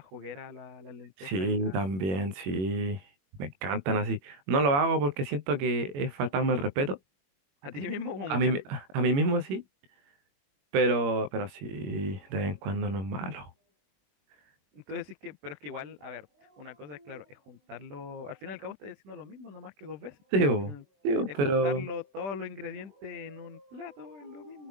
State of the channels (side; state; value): left; late; 21 ms